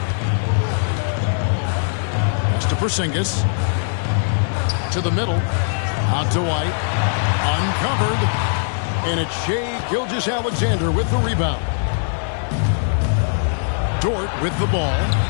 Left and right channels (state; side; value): silent; right; digital silence